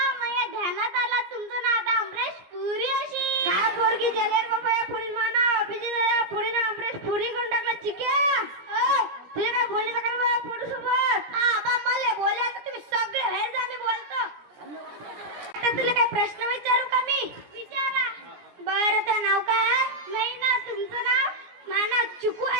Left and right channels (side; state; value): left; late; 17 ms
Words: माझ्या ध्यानात आला तुमचं नाव आता अमरेश पुरी. अशी काय पोरगी जेलेर बाबा? या पुरी माना अभिजित या पुरी ना अमरेश पुरी करून टाकला. चिक्या तुझे काय बोलले का बाबा पुरी सोबत? आबा मला बोलायचं, तुम्ही सगळे बाहेर जा, मी बोलतो. आता तुला काय प्रश्न विचारू का मी? विचारा. बरं, तर नाव काय? नाही ना, तुमचं नाव? माना चिकू